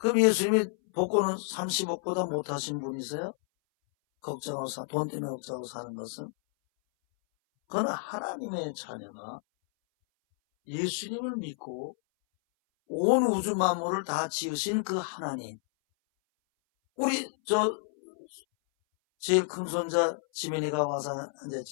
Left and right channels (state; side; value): silent; right; 58 dB below the other